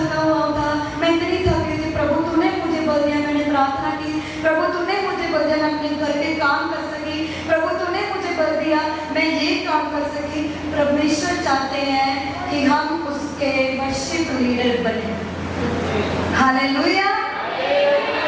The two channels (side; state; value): both; identical; correlation 1.00